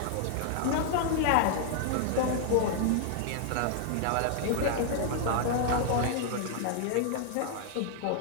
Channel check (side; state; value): both; different; correlation -0.01